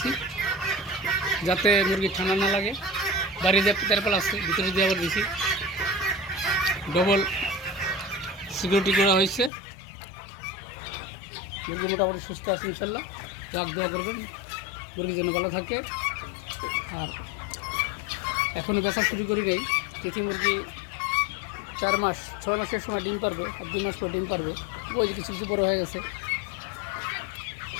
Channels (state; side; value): drops out; right; at 9.5 s